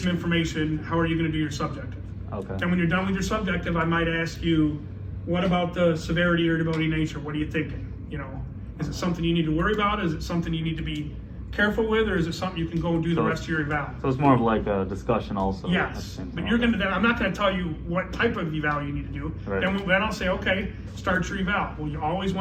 information. How are you gonna do your subjective? Okay. And when you're done with your subjective, I might ask you, what about the severity, irritability, nature? What are you thinking? You know, is it something you need to worry about? Is it something you need to be careful with, or is it something you can go and do the rest of your eval? So it's more of like a discussion also. Yes, but I'm not gonna tell you what type of eval you need to do. Right. Then I'll say, okay, start your eval. Well, you always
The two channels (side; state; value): both; identical; correlation 1.00